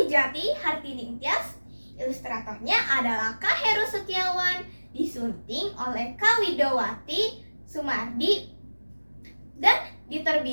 Hartini Tias. Ilustratornya adalah Kak Heru Setiawan, disunting oleh Kawidowati Sumardi, dan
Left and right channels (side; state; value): both; inverted; correlation -1.00